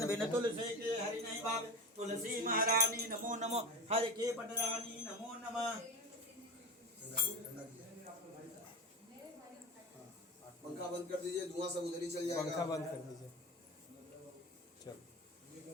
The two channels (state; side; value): normal; both; correlation 0.25